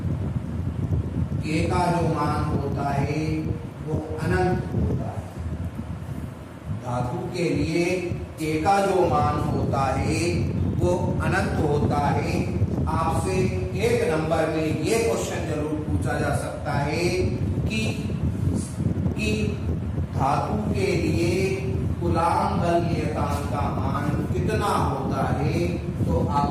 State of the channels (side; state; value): both; identical; correlation 1.00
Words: के का जो मान होता है वो अनंत होता है। धातु के लिए के का जो मान होता है वो अनंत होता है। आपसे एक नंबर में ये क्वेश्चन जरूर पूछा जा सकता है कि धातु के लिए कूलॉम बल नियतांक का मान कितना होता है। तो